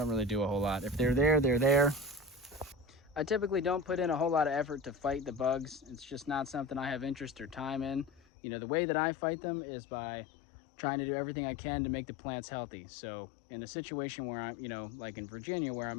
really do a whole lot. If they're there, they're there. I typically don't put in a whole lot of effort to fight the bugs. It's just not something I have interest or time in. You know, the way that I fight them is by trying to do everything I can to make the plants healthy. So in a situation where I'm, you know, like in Virginia, where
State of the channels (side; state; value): right; drops out; at 8.2 s